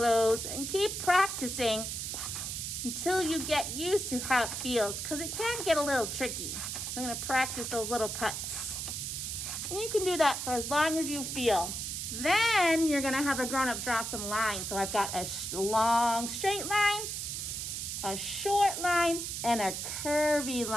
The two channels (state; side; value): noise; right; hiss, 4 dB below the sound